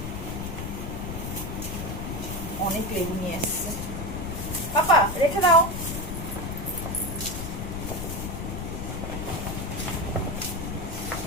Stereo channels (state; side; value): noise; left; rumble, 5 dB below the sound